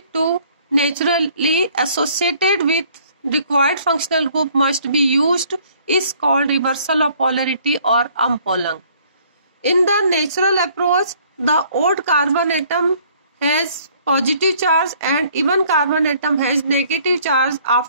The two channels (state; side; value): inverted; both; correlation -0.59